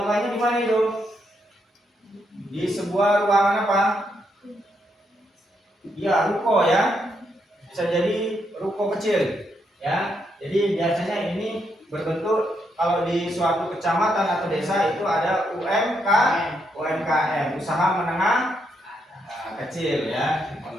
di mana itu? Di sebuah ruangan apa? Ya, ruko ya. Bisa jadi ruko kecil ya. Jadi biasanya ini berbentuk kalau di suatu kecamatan atau desa itu ada UMKM, usaha menengah kecil ya,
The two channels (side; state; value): both; normal; correlation 0.78